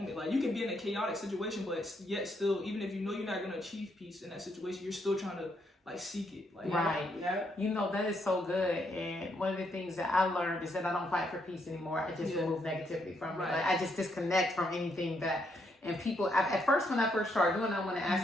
Like you can be in a chaotic situation, but yet still, even if you know you're not gonna achieve peace in that situation, you're still trying to like seek it. Like Right. Yeah. You know, that is so good. And one of the things that I learned is that I don't fight for peace anymore. I just remove negativity from it. Right. Like I just disconnect from anything that. And people, at first, when I first started doing it, I want to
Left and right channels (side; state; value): both; normal; correlation 0.76